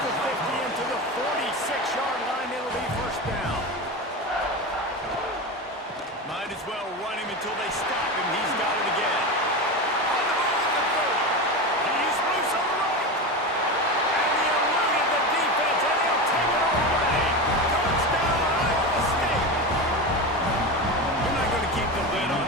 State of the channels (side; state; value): both; normal; correlation 0.22